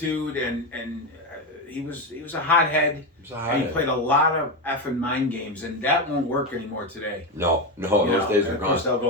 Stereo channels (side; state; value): both; normal; correlation 0.12